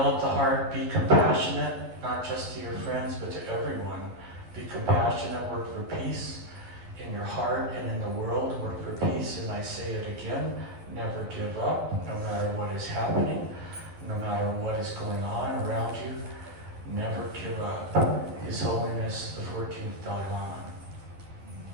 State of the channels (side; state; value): left; late; 11 ms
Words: the heart, be compassionate, not just to your friends, but to everyone. Be compassionate, work for peace in your heart and in the world, work for peace. And I say it again, never give up, no matter what is happening, no matter what is going on around you, never give up. His Holiness the 14th Dalai Lama.